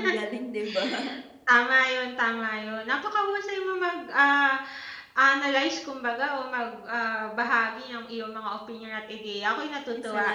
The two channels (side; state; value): both; identical; correlation 1.00